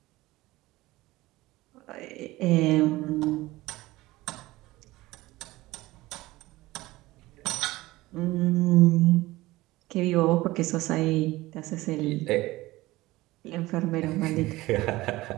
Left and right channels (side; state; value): left; quieter; 18.9 dB